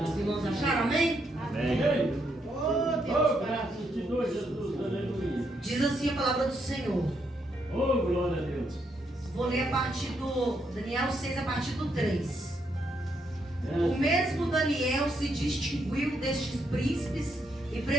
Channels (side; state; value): both; normal; correlation 0.77